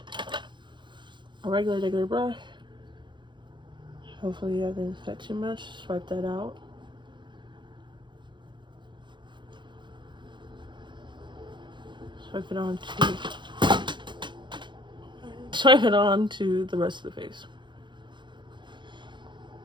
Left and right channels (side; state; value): left; late; 0.23 ms